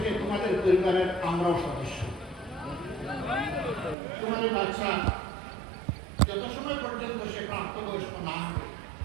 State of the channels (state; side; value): drops out; left; at 4.0 s